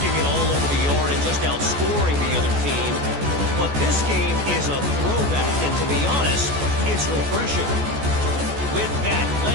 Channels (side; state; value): left; late; 14 ms